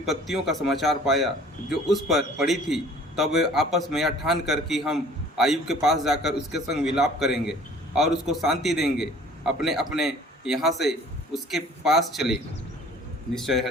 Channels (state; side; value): normal; both; correlation 0.51